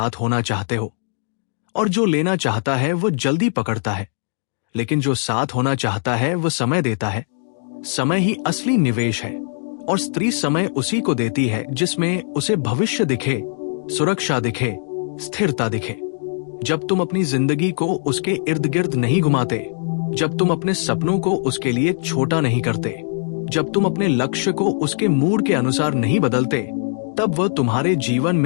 होना चाहते हो। और जो लेना चाहता है वो जल्दी पकड़ता है, लेकिन जो साथ होना चाहता है वो समय देता है। समय ही असली निवेश है, और स्त्री समय उसी को देती है जिसमें उसे भविष्य दिखे, सुरक्षा दिखे, स्थिरता दिखे। जब तुम अपनी जिंदगी को उसके इर्द गिर्द नहीं घुमाते, जब तुम अपने सपनों को उसके लिए छोटा नहीं करते, जब तुम अपने लक्ष्य को उसके मूड के अनुसार नहीं बदलते, तब वह तुम्हारे जीवन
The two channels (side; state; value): right; silent; digital silence